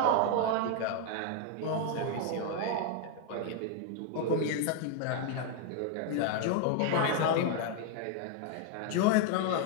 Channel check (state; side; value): different; both; correlation 0.00